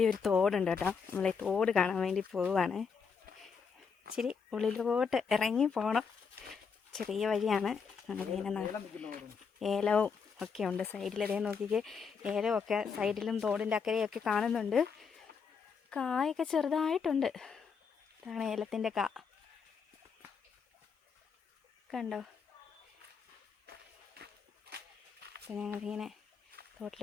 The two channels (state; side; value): quieter; right; 5.9 dB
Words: ഇവിടെ ഒരു തോടുണ്ട് കേട്ടോ. നമ്മളെ തോട് കാണാൻ വേണ്ടി പോവുകയാണ്. ഇച്ചിരി ഉള്ളിലോട്ട് ഇറങ്ങി പോകണം. ചെറിയ വഴിയാണ്. ഞങ്ങളിങ്ങനെ ഏലവും ഒക്കെ ഉണ്ട് സൈഡിലതേ നോക്കിക്ക്. ഏലമൊക്കെ സൈഡിലും തോടിൻ്റെ അക്കരെയൊക്കെ കാണുന്നുണ്ട്. കായൊക്കെ ചെറുതായിട്ടുണ്ട്. ഇതാണ് ഏലത്തിൻ്റെ കാ. കണ്ടോ? അപ്പം ഞങ്ങളിങ്ങനെ